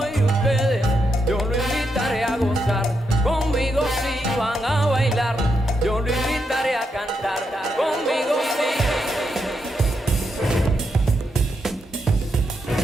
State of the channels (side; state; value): both; normal; correlation 0.82